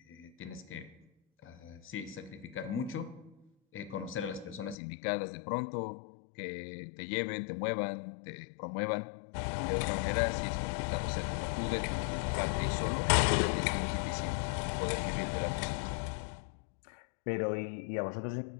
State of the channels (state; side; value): drops out; right; at 4.8 s